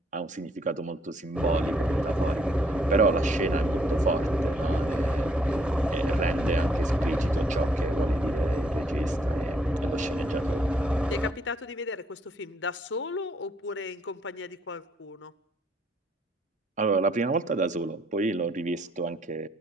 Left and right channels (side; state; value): both; normal; correlation 0.69